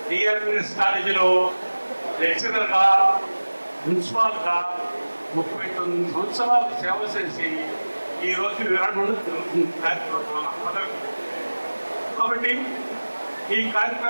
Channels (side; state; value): both; inverted; correlation -1.00